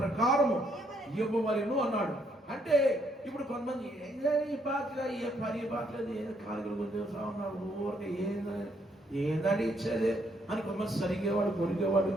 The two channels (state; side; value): normal; both; correlation 0.71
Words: ఇవ్వవలెను అన్నాడు. అంటే ఇప్పుడు కొంతమంది ఈ పాటలు ఏ పని పాటలేదు, ఏదో కాలుగలు గుర్తు ఉన్నాడు, ఊరికే ఏందని ఇచ్చేది అని కొంతమంది సరిగేవాడు, కొరిగేవాడు